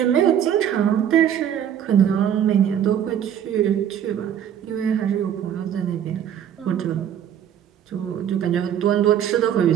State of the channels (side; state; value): left; quieter; 9.5 dB